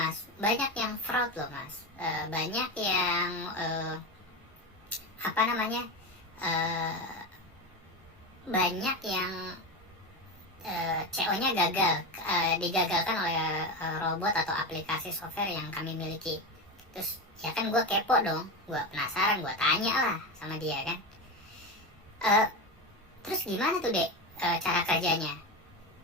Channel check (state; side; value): normal; both; correlation 0.19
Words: banyak yang fraud loh mas, banyak yang banyak yang CO-nya gagal, digagalkan oleh robot atau aplikasi software yang kami miliki. Terus ya kan gue kepo dong, gue penasaran, gue tanya lah sama dia kan, terus gimana tuh dek cara kerjanya?